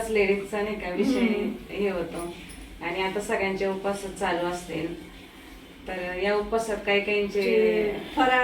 लेडीजचा नाही का विषय हे होतो. आणि आता सगळ्यांचे उपवास चालू असतील, तर या उपवासात काही काहींचे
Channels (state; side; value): identical; both; correlation 1.00